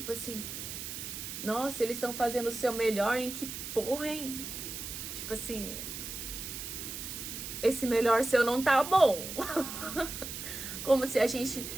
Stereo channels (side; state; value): right; noise; hiss, 7 dB below the sound